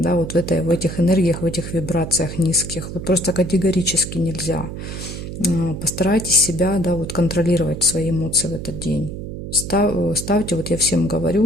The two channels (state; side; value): noise; right; hum, 8 dB below the sound